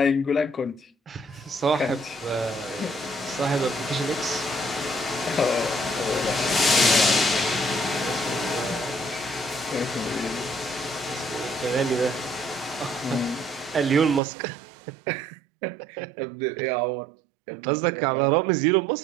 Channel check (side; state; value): left; drops out; at 14.2 s